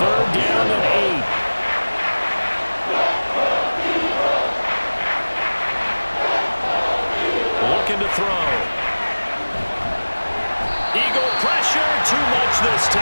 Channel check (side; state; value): both; inverted; correlation -1.00